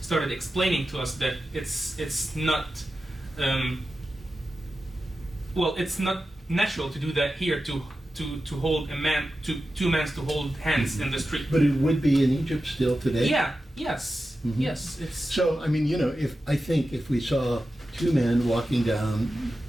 started explaining to us that it's not, well, it's not natural to do that here, to hold a man, two men to hold hands in the street. But it would be in Egypt still today? Yeah, yes, yes, it's... So, I mean, if we saw 2 men walking down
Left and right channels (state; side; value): normal; both; correlation 0.92